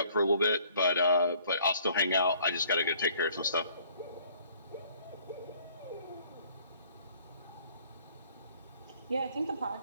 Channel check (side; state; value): both; inverted; correlation -0.59